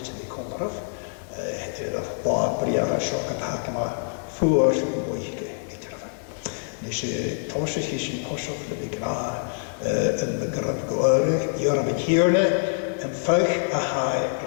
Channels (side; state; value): right; silent; 58 dB below the other